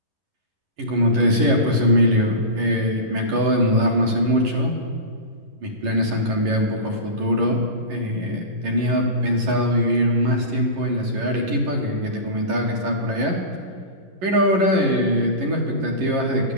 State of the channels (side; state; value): left; late; 11 ms